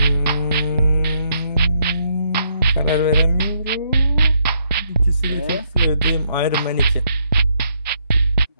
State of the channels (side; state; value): both; inverted; correlation -0.74